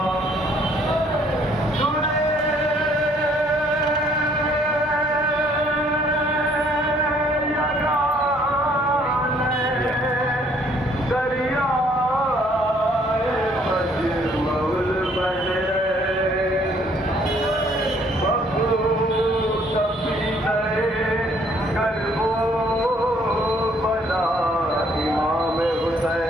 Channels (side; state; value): both; normal; correlation 0.63